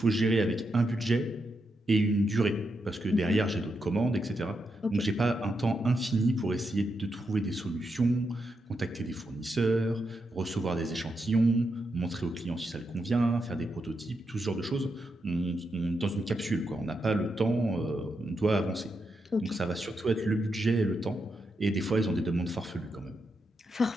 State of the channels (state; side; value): normal; both; correlation 0.84